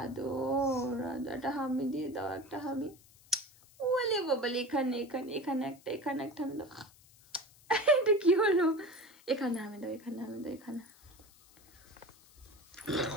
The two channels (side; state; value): left; noise; hiss, 26 dB below the sound